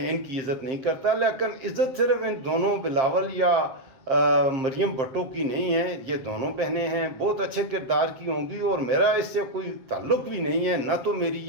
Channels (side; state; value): left; late; 7.5 ms